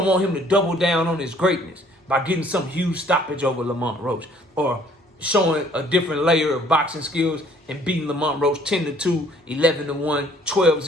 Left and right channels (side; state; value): both; normal; correlation 0.59